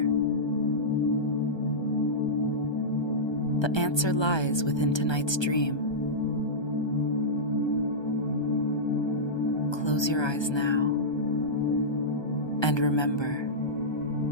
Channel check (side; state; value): right; late; 1.2 ms